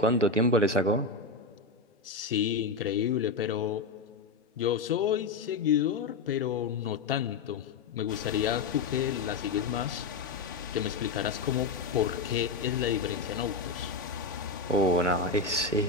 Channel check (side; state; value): right; quieter; 4.1 dB